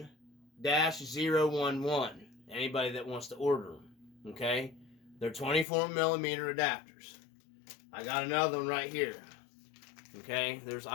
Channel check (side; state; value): right; drops out; at 5.7 s